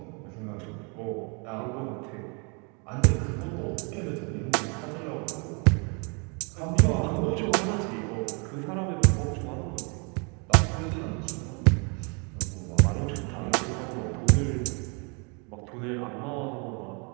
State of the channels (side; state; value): left; quieter; 33.7 dB